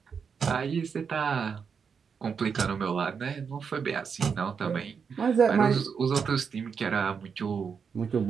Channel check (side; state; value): left; quieter; 6.2 dB